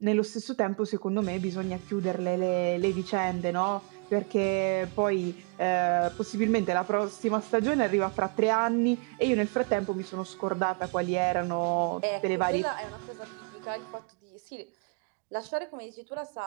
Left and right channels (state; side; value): quieter; left; 35.1 dB